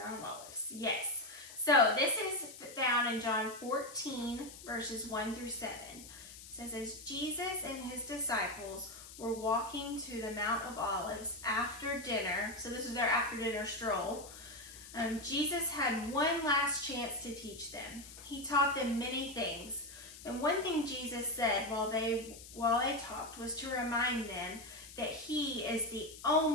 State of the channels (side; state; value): left; noise; hiss, 15 dB below the sound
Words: of Olives, yes. So this is found in John 14, verses 1 through 7. It says, as Jesus and his disciples were walking to the Mount of Olives after dinner, so this is their after dinner stroll, Jesus had one last chance to teach them. He taught them many things. And one thing Jesus said while they talked was to remind them that he is the